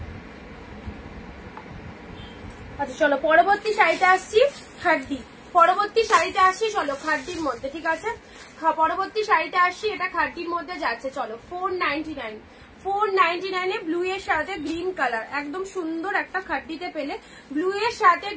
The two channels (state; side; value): identical; both; correlation 1.00